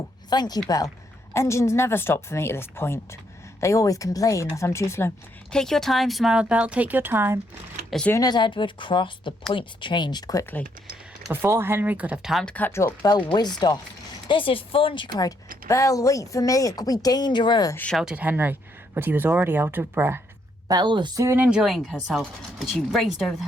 thank you, Belle. Engines never stop for me at this point. They always complain that I'm too slow. Take your time, smiled Belle, take your time. As soon as Edward crossed, the points changed quickly. Before Henry could have time to catch up, Belle whizzed off. This is fun, she cried. Belle, wait for me, it could be dangerous, shouted Henry, but he was already out of breath. Belle was soon enjoying herself, but she raced over the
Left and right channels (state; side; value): normal; both; correlation 0.73